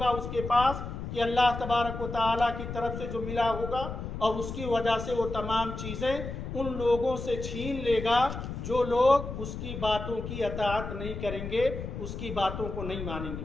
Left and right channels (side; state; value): left; noise; rumble, 7 dB below the sound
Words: اس کے پاس کہ اللہ تبارک و تعالیٰ کی طرف سے جو ملا ہوگا اور اس کی وجہ سے وہ تمام چیزیں ان لوگوں سے چھین لے گا جو لوگ اس کی باتوں کی اطاعت نہیں کریں گے، اس کی باتوں کو نہیں مانیں گے۔